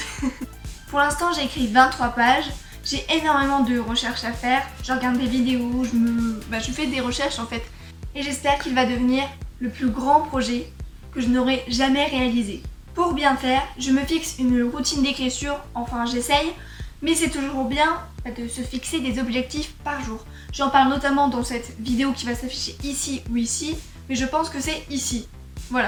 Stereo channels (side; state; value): both; identical; correlation 1.00